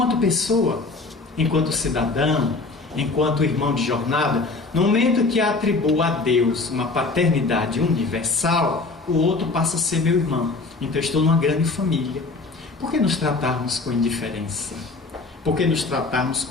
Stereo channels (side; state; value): right; quieter; 3.7 dB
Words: pessoa, enquanto cidadão, enquanto irmão de jornada, no momento que atribuo a Deus uma paternidade universal, o outro passa a ser meu irmão. Então estou numa grande família. Por que nos tratarmos com indiferença? Por que nos tratarmos